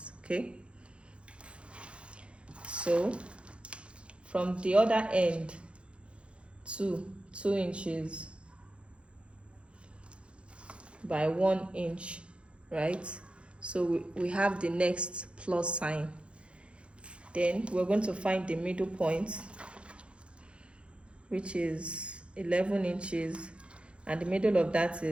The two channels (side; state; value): left; late; 0.059 ms